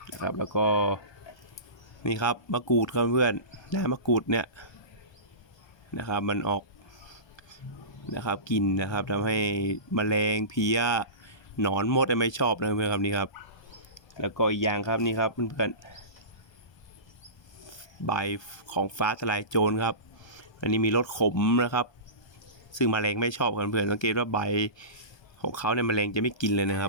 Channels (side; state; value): right; late; 1.2 ms